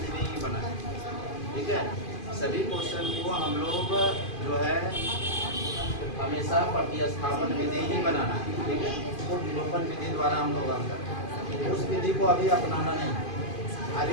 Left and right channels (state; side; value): late; right; 2.5 ms